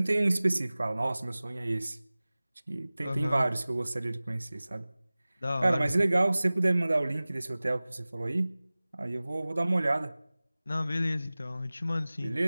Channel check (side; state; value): both; inverted; correlation -0.98